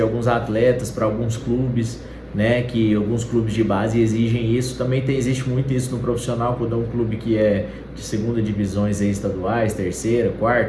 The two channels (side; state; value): both; identical; correlation 1.00